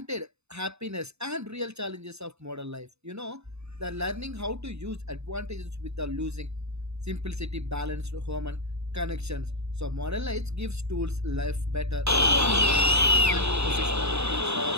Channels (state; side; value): late; left; 0.80 ms